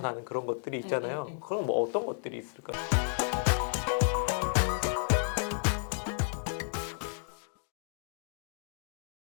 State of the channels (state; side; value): silent; right; digital silence